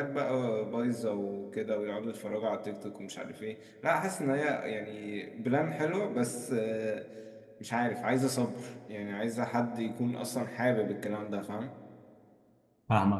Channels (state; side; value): identical; both; correlation 1.00